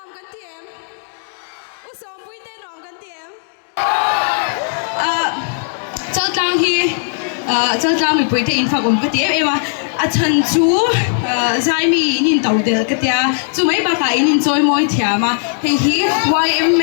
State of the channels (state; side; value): silent; right; 67 dB below the other